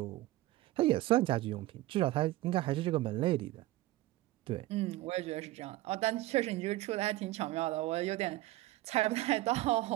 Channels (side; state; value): left; quieter; 17.2 dB